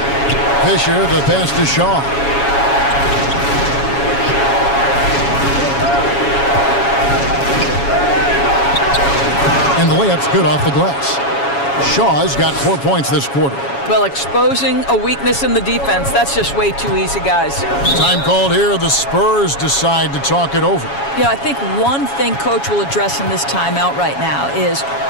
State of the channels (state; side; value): late; right; 7.2 ms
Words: Fisher, the pass to Shaw. And the layup's good off the glass. Shaw's got 4 points this quarter. Well, exposing a weakness in the defense, that's just way too easy, guys. Time called here. The Spurs decide to talk it over. Yeah, I think one thing Coach will address in this timeout right now is